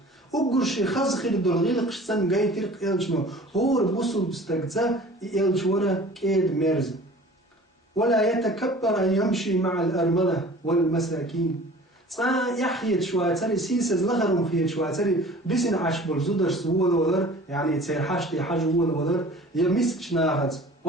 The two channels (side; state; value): both; normal; correlation 0.45